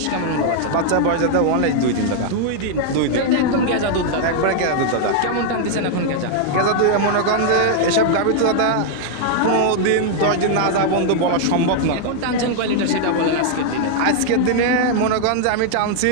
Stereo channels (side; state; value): both; different; correlation 0.00